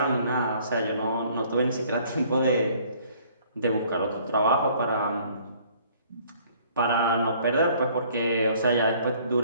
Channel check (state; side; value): inverted; both; correlation -0.58